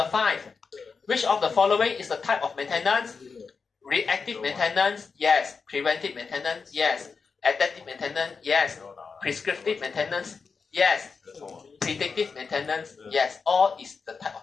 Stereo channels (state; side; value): quieter; right; 5.1 dB